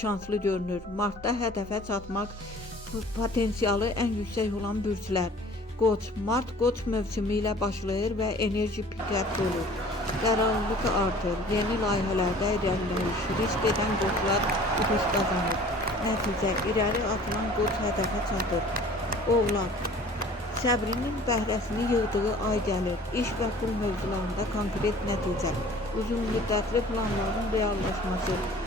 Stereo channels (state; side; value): normal; both; correlation 0.48